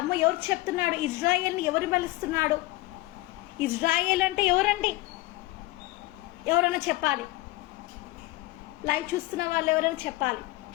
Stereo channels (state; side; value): quieter; right; 19.1 dB